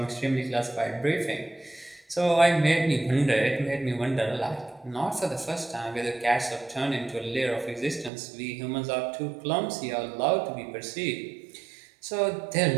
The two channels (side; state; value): left; drops out; at 8.1 s